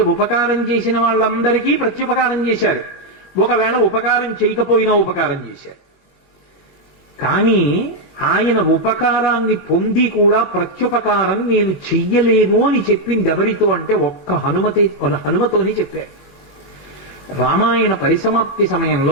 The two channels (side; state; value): right; late; 21 ms